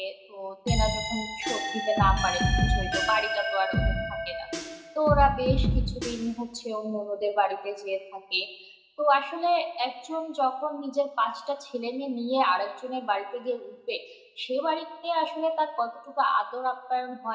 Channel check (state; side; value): identical; both; correlation 1.00